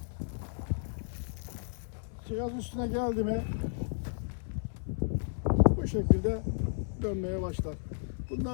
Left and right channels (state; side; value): silent; right; 56 dB below the other